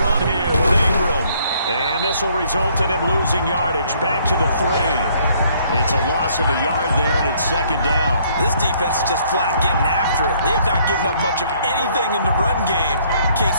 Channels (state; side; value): inverted; both; correlation -0.64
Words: run here with Ingram. And this will result in him losing yardage. Back to the 3. It's a loss of a yard there, and it's 2nd down. This defense is just flat getting after it. They have not given up much of anything in the run game.